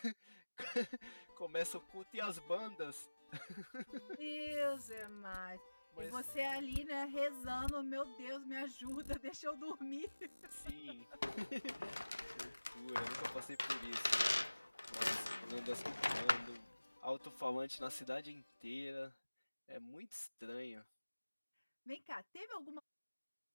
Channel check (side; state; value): both; inverted; correlation -1.00